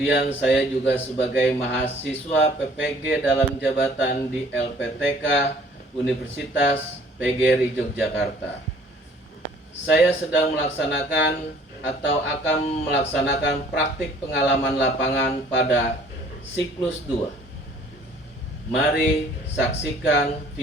saya juga sebagai mahasiswa PPG dalam jabatan di LPTK Universitas PGRI Yogyakarta. Saya sedang melaksanakan atau akan melaksanakan praktik pengalaman lapangan pada siklus 2. Mari saksikan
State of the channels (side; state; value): both; normal; correlation 0.56